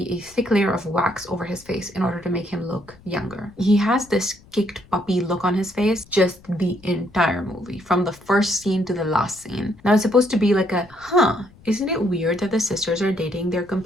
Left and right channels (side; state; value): left; noise; rumble, 25 dB below the sound